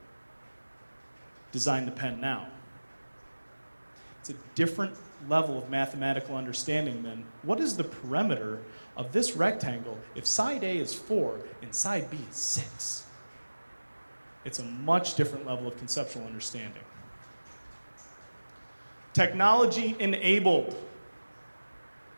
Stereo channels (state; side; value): inverted; both; correlation -1.00